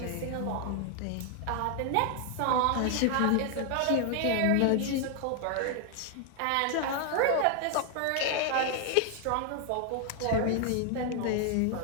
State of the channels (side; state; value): both; different; correlation 0.00